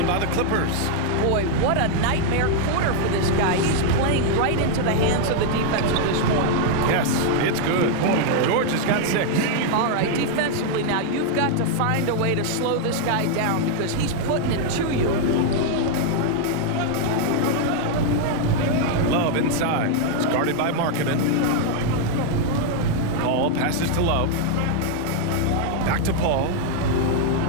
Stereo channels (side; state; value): both; different; correlation 0.00